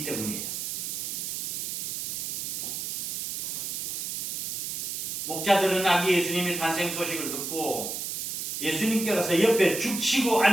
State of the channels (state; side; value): noise; right; hiss, 3 dB below the sound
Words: 때문이에요. 목자들은 아기 예수님의 탄생 소식을 듣고 예수님께 가서 옆에 죽치고